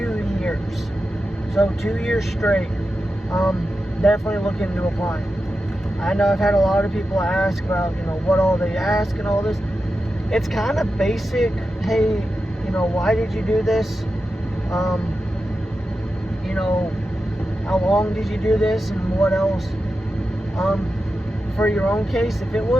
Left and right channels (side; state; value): both; normal; correlation 0.91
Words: years, so 2 years straight, definitely look into applying. I know I've had a lot of people ask about, what all they ask and all this. It's kind of basic. Hey, why did you do this? How long did you do this, and what else? For your own case, if it